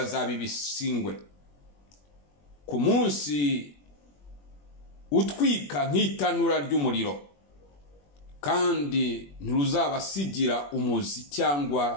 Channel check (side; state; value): right; late; 21 ms